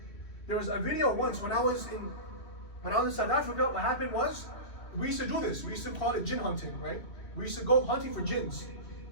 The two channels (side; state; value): right; late; 2.7 ms